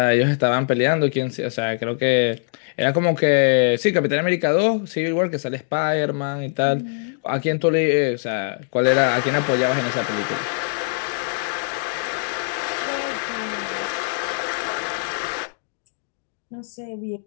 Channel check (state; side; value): silent; right; digital silence